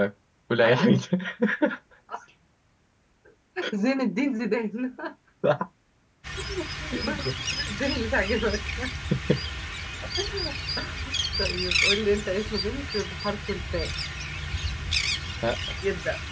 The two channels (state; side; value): identical; both; correlation 1.00